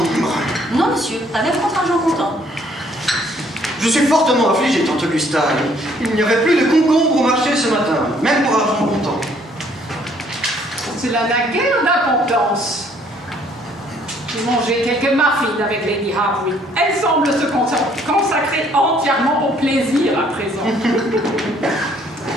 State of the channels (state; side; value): normal; both; correlation 0.63